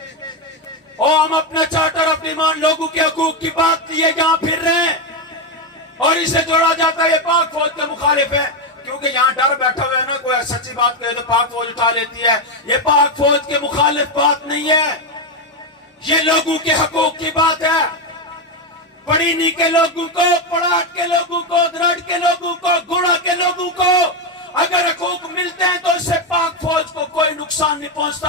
اور ہم اپنا چارٹر آف ڈیمانڈ لوگوں کے حقوق کی بات لیے یہاں پھر رہے ہیں, اور اسے جوڑا جاتا ہے یہ پاک فوج کے مخالف ہے. کیونکہ یہاں ڈر بیٹھا ہوا ہے نا, کوئی سچی بات کہے تو پاک فوج اٹھا لیتی ہے. یہ پاک فوج کے مخالف بات نہیں ہے, یہ لوگوں کے حقوق کی بات ہے. پڑینی کے لوگوں کو, پڑاٹ کے لوگوں کو, درڑ کے لوگوں کو, گوڑا کے لوگوں کو اگر حقوق ملتے ہیں تو اس سے پاک فوج کو کوئی نقصان نہیں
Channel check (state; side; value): normal; both; correlation 0.08